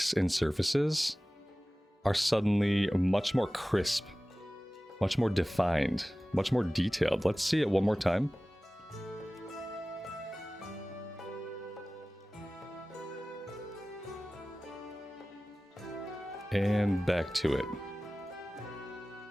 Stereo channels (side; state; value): both; normal; correlation 0.97